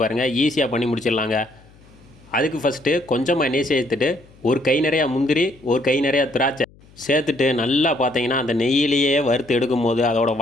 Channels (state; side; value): noise; left; hum, 26 dB below the sound